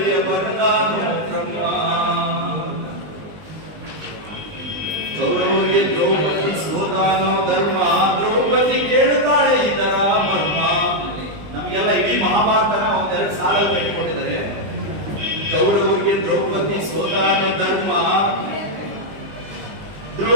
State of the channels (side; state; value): left; late; 20 ms